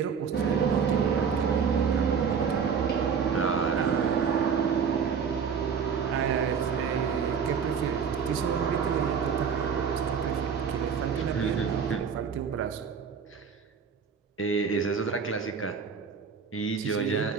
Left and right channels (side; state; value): left; quieter; 6.5 dB